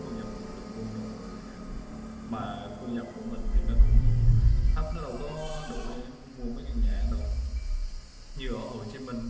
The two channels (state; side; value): identical; both; correlation 1.00